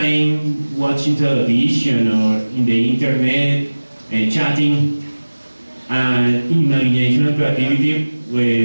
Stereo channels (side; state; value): both; inverted; correlation -1.00